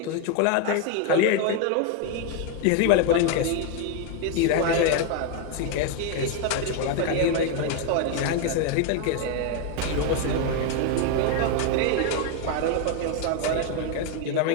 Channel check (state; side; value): different; both; correlation 0.01